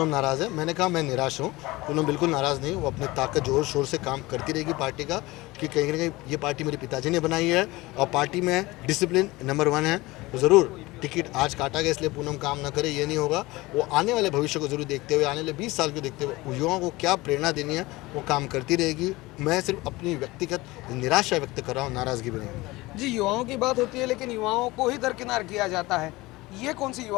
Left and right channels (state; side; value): quieter; right; 20.7 dB